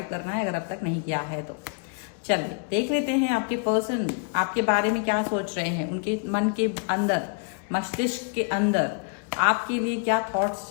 करना है अगर अब तक नहीं किया है तो। चलिए देख लेते हैं आपके पर्सन आपके बारे में क्या सोच रहे हैं। उनके मन के अंदर, मस्तिष्क के अंदर आपके लिए क्या थॉट्स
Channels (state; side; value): quieter; right; 38.7 dB